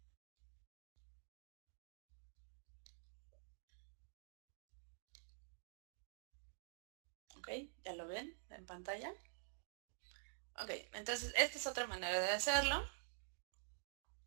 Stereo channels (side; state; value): left; silent; digital silence